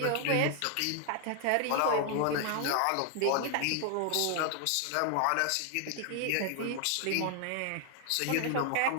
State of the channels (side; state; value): both; different; correlation 0.00